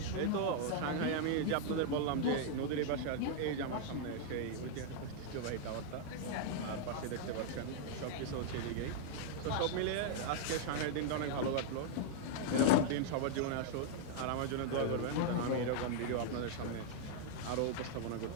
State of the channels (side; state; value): both; different; correlation -0.01